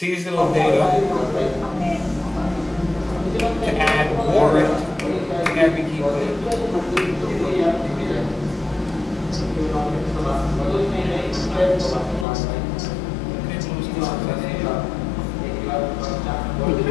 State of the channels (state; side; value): drops out; right; at 12.2 s